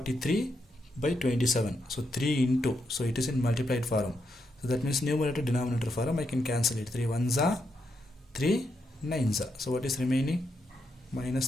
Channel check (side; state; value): both; normal; correlation 0.81